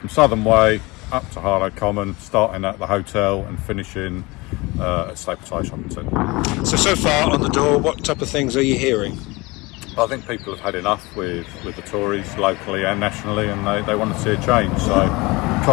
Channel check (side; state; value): right; quieter; 23.8 dB